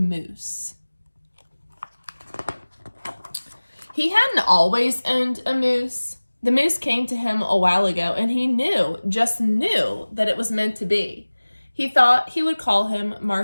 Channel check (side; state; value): both; inverted; correlation -1.00